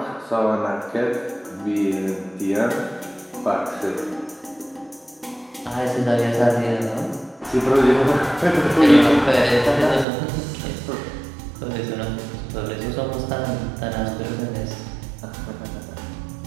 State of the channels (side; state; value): left; drops out; at 10.1 s